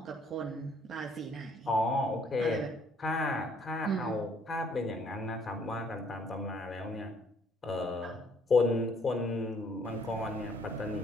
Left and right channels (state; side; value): normal; both; correlation 0.64